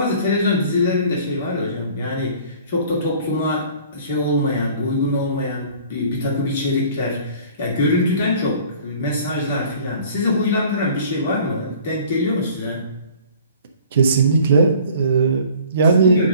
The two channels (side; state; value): both; inverted; correlation -0.50